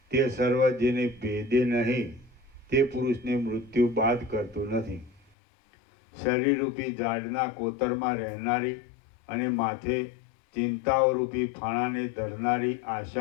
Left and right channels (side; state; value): right; drops out; at 5.2 s